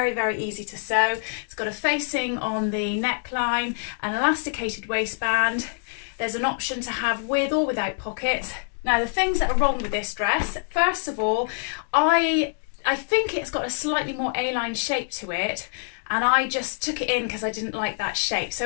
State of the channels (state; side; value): silent; right; digital silence